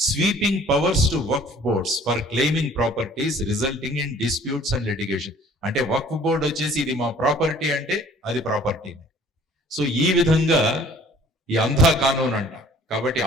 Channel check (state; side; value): normal; both; correlation 0.53